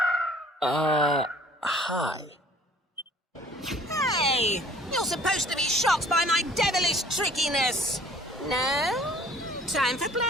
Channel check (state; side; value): normal; both; correlation 0.54